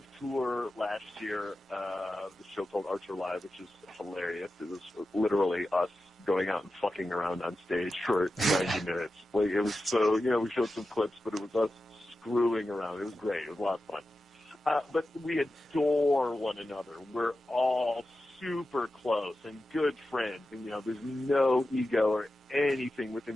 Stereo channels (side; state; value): both; normal; correlation 0.92